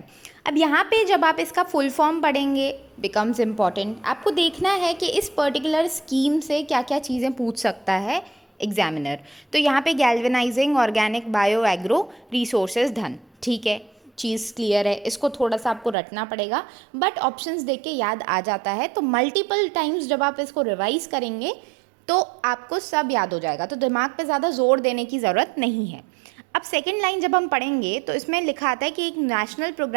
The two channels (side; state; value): left; drops out; at 16.0 s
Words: अब यहाँ पे जब आप इसका फुल फॉर्म पढ़ेंगे बिकम्स इम्पॉर्टेंट, आपको देखना है कि इस पर्टिकुलर स्कीम से क्या क्या चीज़ें पूछ सकता है एग्जामिनर। तो यहाँ पे galvanising organic bio agro resources धन, ठीक है, चीज़ क्लियर है। इसको थोड़ा सा आपको रटना पड़ेगा, बट ऑप्शंस देख के याद आ जाता है। तो मल्टीपल टाइम्स जब आप इसको रिवाइज करेंगे तो आपको सब याद हो जाएगा, तो दिमाग पे ज़्यादा जोर देने की ज़रूरत नहीं है। अब सेकंड लाइन जब हम पढ़ेंगे तो इसमें लिखा आता है कि एक नेशनल